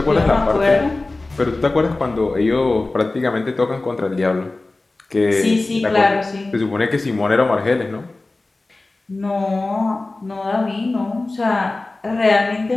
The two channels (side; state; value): right; quieter; 3.1 dB